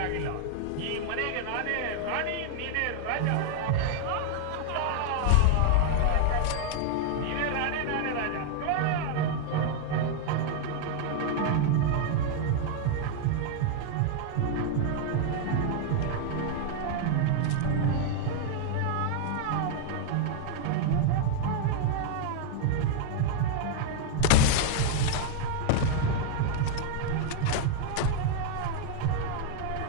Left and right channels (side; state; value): both; different; correlation 0.00